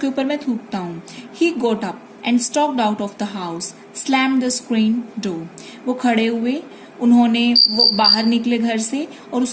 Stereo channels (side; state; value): both; identical; correlation 1.00